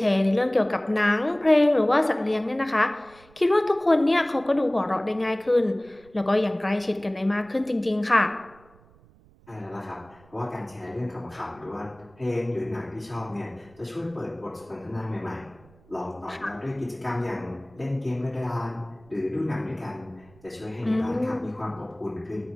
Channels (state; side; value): noise; right; rumble, 27 dB below the sound